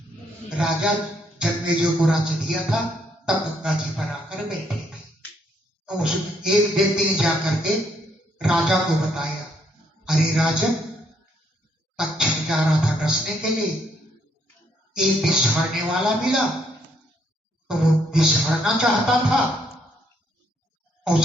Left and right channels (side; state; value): both; normal; correlation 0.71